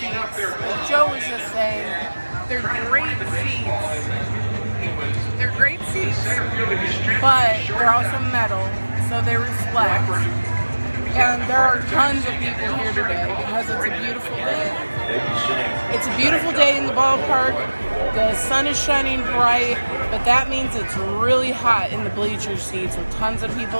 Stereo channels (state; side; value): inverted; both; correlation -1.00